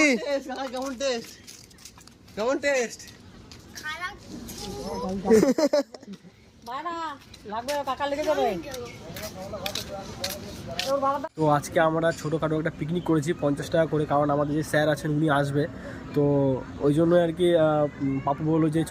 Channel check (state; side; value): identical; both; correlation 1.00